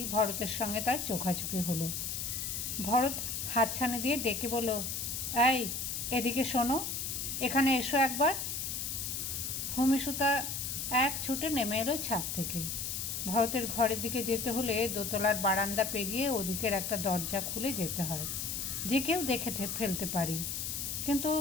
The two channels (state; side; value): noise; left; hiss, 3 dB below the sound